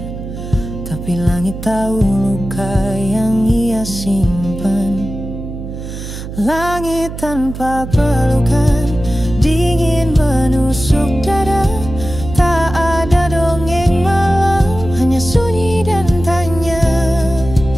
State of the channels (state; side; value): noise; right; hum, 9 dB below the sound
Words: tapi langit tahu luka yang ia simpan. Langit tanpa pelukan, dingin menusuk dada. Tak ada dongeng malam, hanya sunyi dan tanya.